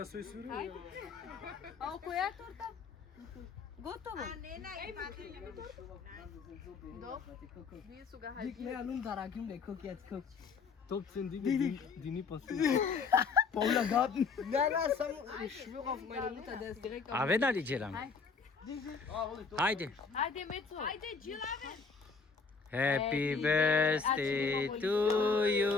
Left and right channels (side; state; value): right; quieter; 5.1 dB